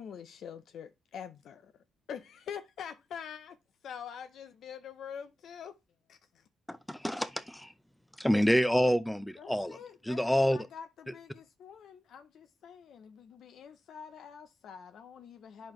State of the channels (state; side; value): normal; both; correlation 0.97